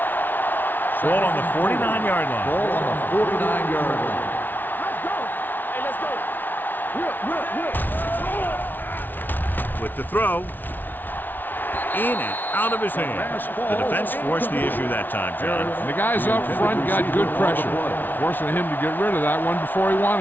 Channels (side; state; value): right; late; 0.088 ms